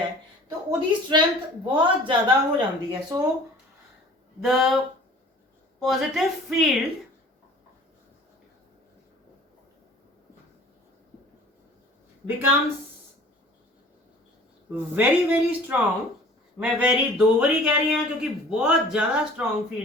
तो उहदी स्ट्रेंथ बहुत ज़्यादा हो जाती है। So the positive field becomes very very strong. मैं वेरी 2 बारी कह रही हूँ क्योंकि बहुत ज़्यादा स्ट्रॉन्ग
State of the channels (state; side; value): normal; both; correlation 0.47